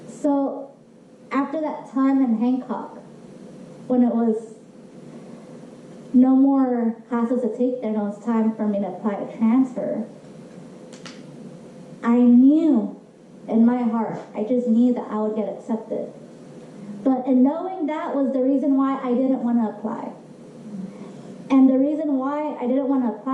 So after that time in Hancock, when it was no more classes to take there, and it was time for me to apply to transfer, I knew in my heart, I just knew that I would get accepted. But in knowing that was the reason why I didn't want to apply. And the reason why I didn't want to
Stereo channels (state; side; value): identical; both; correlation 1.00